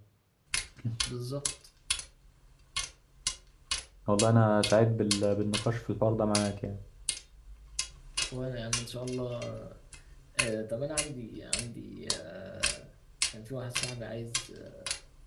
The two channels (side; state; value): both; identical; correlation 1.00